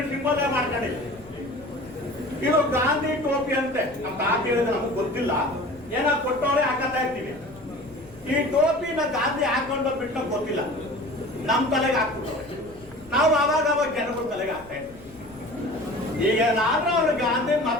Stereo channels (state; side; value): noise; left; rumble, 23 dB below the sound